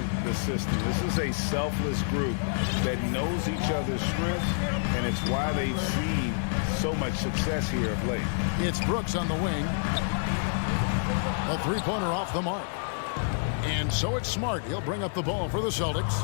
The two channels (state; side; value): silent; right; digital silence